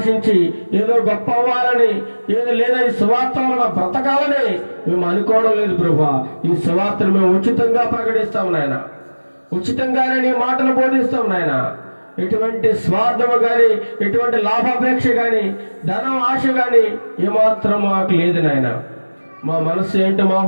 ఏదో గొప్ప అవ్వాలని, ఏదో లేదా ఈ సువార్త వలన బ్రతకాలని మేము అనుకోవడం లేదు ప్రభా. ఈ సువార్తను మేము ఉచితంగా ప్రకటిస్తాము నాయన. ఉచితంగానే నీ మాటలు బోధిస్తాం నాయన. ఎటువంటి స్వార్థము కానీ, ఎటువంటి లాభాపేక్ష కానీ, ధనం ఆశ కానీ ఏమాత్రం మాకు లేదు నాయన. మా మనస్సు ఏంటో, మా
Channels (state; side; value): inverted; both; correlation -1.00